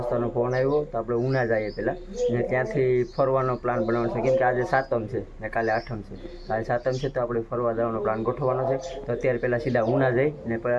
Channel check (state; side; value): identical; both; correlation 1.00